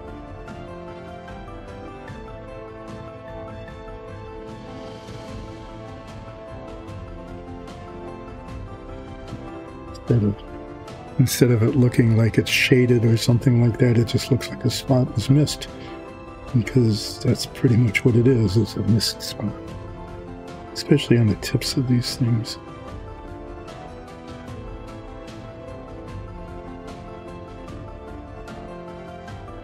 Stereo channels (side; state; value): both; identical; correlation 1.00